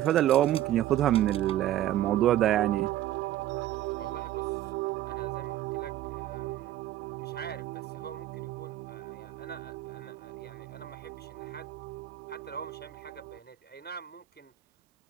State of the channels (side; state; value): left; quieter; 13.1 dB